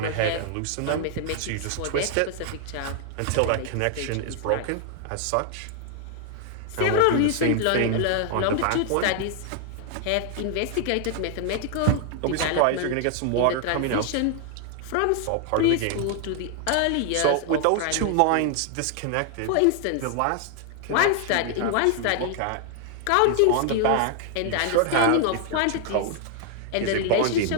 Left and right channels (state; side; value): different; both; correlation 0.00